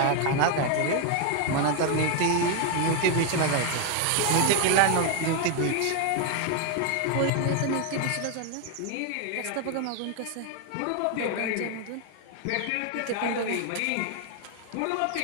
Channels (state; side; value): different; both; correlation 0.01